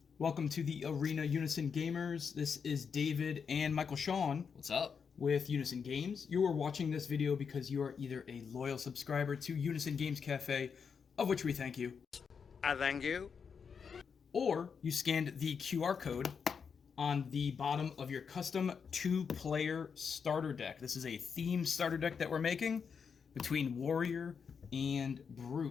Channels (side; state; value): right; quieter; 6.3 dB